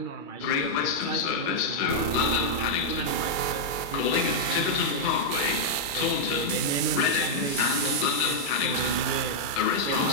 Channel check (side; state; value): right; late; 2.3 ms